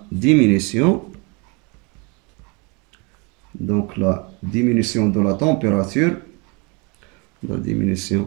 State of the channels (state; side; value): quieter; left; 30.6 dB